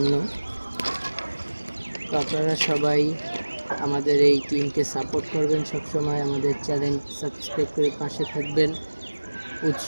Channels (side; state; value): both; inverted; correlation -1.00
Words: তো আপনারা সবাই আমাদের এই টিমকে সাপোর্ট করবেন, সবসময় আমাদের চ্যানেল সাবস্ক্রাইব করে পাশে থাকবেন,